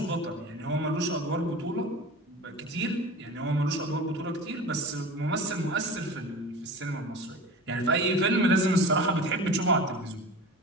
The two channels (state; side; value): normal; both; correlation 0.34